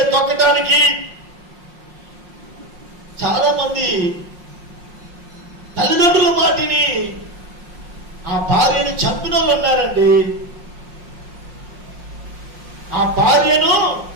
తొక్కటానికి చాలా మంది తల్లిదండ్రుల మాటిని ఆ భార్యను చంపిన వాళ్ళు ఉన్నారండి. ఆ భార్యను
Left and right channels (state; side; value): late; left; 5.6 ms